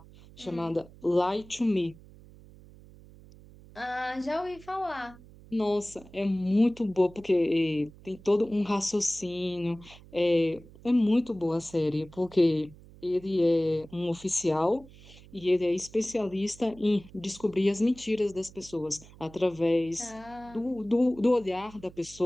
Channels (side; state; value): right; noise; hum, 21 dB below the sound